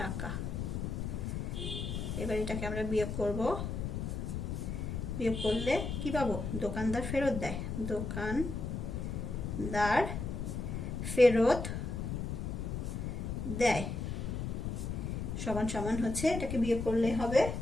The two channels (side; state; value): left; noise; rumble, 3 dB below the sound